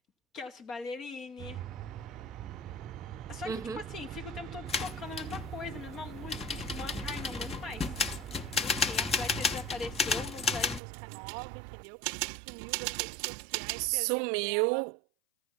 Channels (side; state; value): left; drops out; at 10.8 s